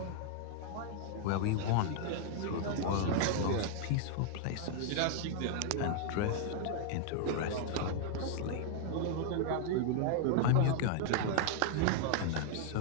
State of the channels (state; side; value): different; both; correlation -0.01